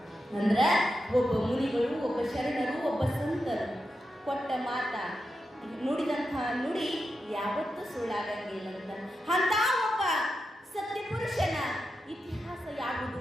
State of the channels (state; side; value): normal; both; correlation 0.88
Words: ಅಂದ್ರೆ ಒಬ್ಬ ಮುನಿಗಳು, ಒಬ್ಬ ಶರಣರು, ಒಬ್ಬ ಸಂತರು ಕೊಟ್ಟ ಮಾತ, ನುಡಿದಂತಹ ನುಡಿ ಯಾವತ್ತೂ ಸುಳ್ಳಾಗಂಗಿಲ್ಲ ಅಂತ ಒಬ್ಬ ಸತ್ಯ ಪುರುಷನ ಇತಿಹಾಸ ಯಾವುದು